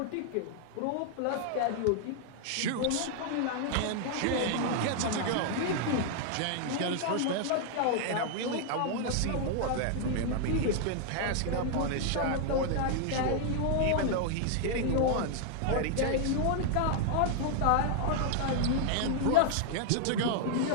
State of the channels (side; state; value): both; different; correlation 0.00